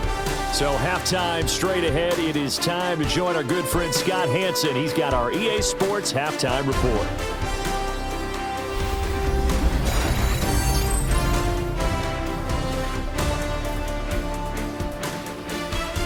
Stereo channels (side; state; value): both; identical; correlation 1.00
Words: So halftime straight ahead. It is time to join our good friend Scott Hansen. He's got our EA Sports halftime report.